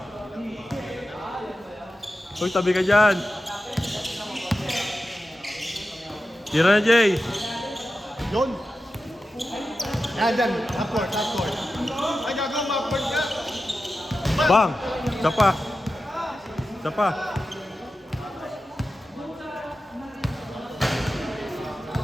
Uy, tabi ka dyan. Tira na, Jay. Yun. Yan, dyan. Upward, upward. Ay, gagawin mo, upward ka. Bang! Isa pa. Isa pa.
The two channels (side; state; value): both; normal; correlation 0.92